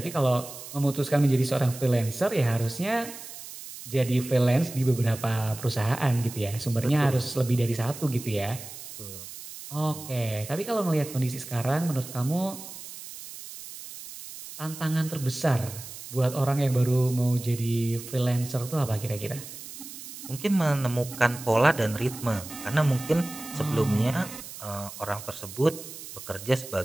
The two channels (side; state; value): right; noise; hiss, 13 dB below the sound